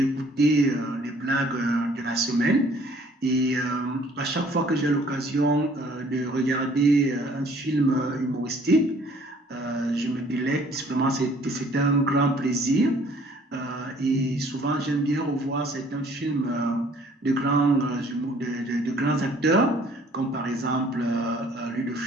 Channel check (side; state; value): both; normal; correlation 0.57